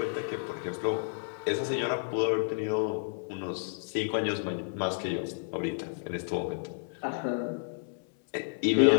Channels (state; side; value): silent; right; 56 dB below the other